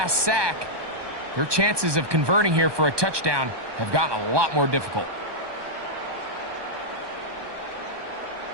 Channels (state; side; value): late; left; 1.2 ms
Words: sack, their chances of converting here for a touchdown have gotten a lot more difficult.